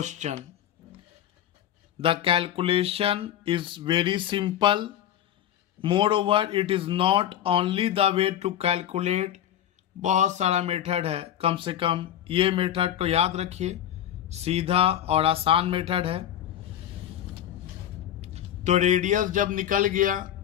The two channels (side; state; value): right; quieter; 11.1 dB